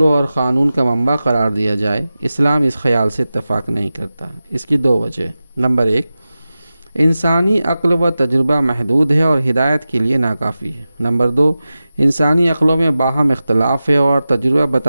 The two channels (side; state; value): both; inverted; correlation -0.94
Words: اور قانون کا منبع قرار دیا جائے، اسلام اس خیال سے اتفاق نہیں کرتا۔ اس کی دو وجہ: نمبر 1، انسانی عقل و تجربہ محدود ہے اور ہدایت کے لیے ناکافی ہے۔ نمبر 2، انسانی عقلوں میں باہم اختلاف ہے اور تجربہ